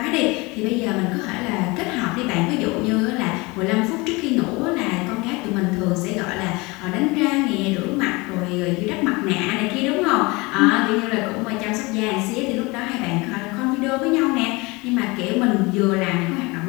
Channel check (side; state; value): right; quieter; 24.8 dB